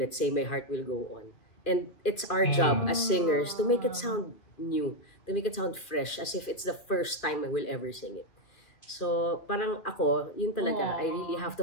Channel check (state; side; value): late; right; 2.6 ms